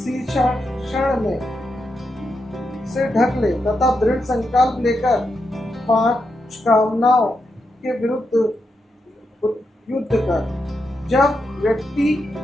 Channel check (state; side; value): normal; both; correlation 0.85